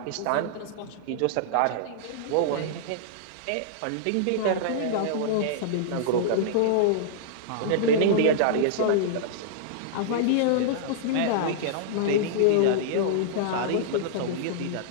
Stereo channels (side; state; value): both; different; correlation -0.02